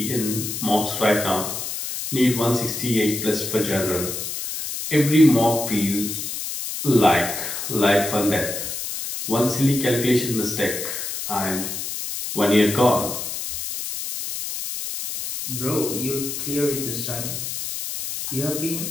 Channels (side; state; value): left; noise; hiss, 5 dB below the sound